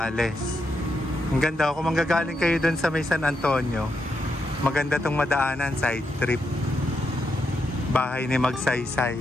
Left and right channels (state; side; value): normal; both; correlation 0.82